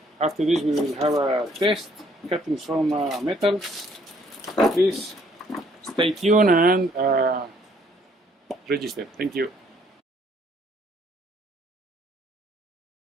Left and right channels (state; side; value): normal; both; correlation 0.64